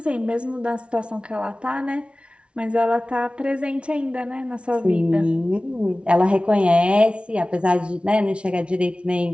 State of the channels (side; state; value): left; late; 0.059 ms